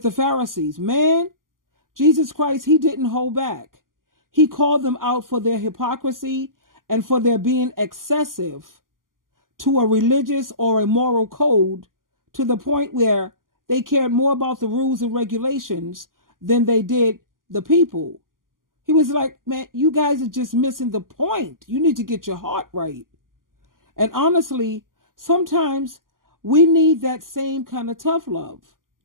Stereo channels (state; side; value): late; left; 0.91 ms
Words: the Pharisees. Man, Jesus Christ, he didn't hold back. He called them out for their hypocrisy and for their being excessive to a religious or a moral code, to the point where they cared more about the rules and regulations than they did the people. He was like, man, you guys are just missing the point. You need to get your heart right. And honestly, sometimes we need that same kind of tough love.